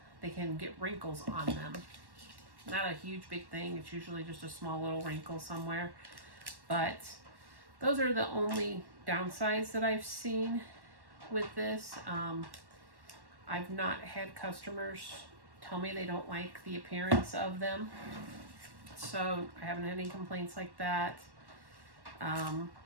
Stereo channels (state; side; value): late; left; 1.1 ms